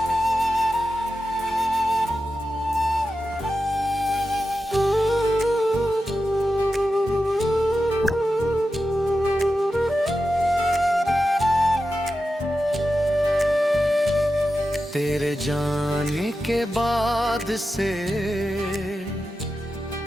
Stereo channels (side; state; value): both; normal; correlation 0.91